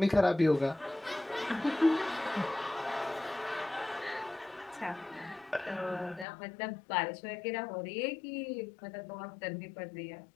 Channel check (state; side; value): drops out; right; at 6.2 s